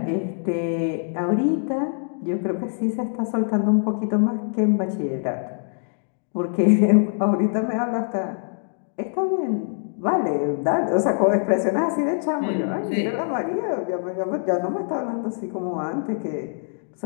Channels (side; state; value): right; silent; 63 dB below the other